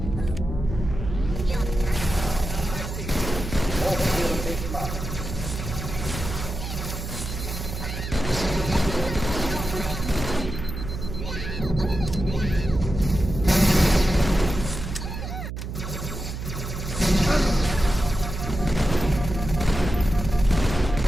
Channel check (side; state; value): right; noise; hum, 7 dB below the sound